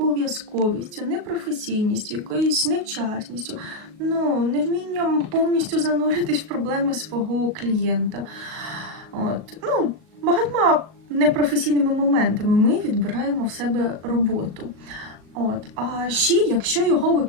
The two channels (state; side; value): late; left; 38 ms